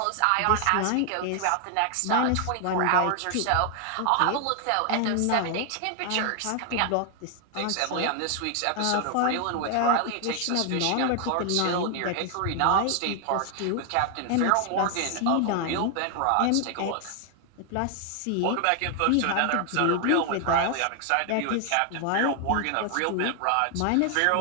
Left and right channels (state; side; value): different; both; correlation 0.00